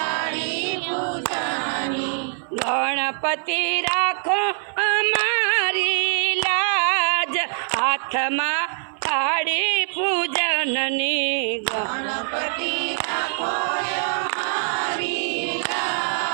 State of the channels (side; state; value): left; silent; 56 dB below the other